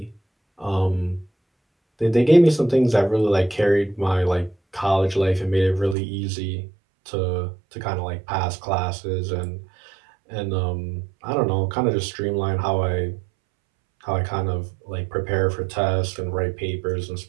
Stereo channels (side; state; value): left; drops out; at 6.0 s